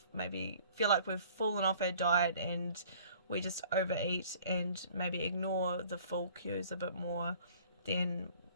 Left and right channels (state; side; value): inverted; both; correlation -0.52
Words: maybe feel like we've fallen off our diet and we just overeat and maybe ignore the full cues a bit more than